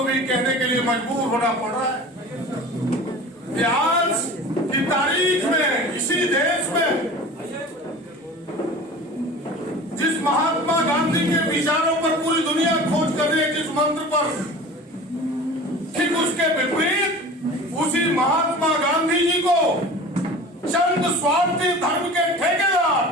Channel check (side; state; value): both; normal; correlation 0.38